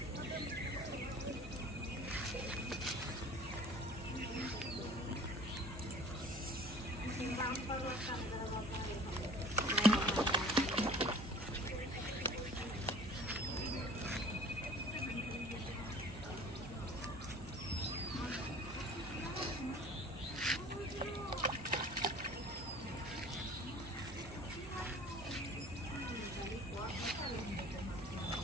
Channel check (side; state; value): both; normal; correlation 0.46